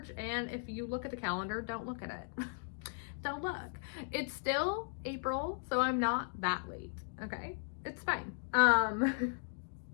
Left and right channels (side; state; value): right; silent; digital silence